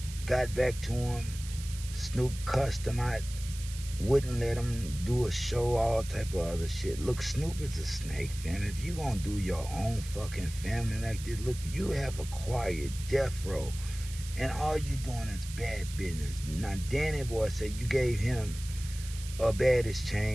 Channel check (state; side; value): noise; right; hiss, 14 dB below the sound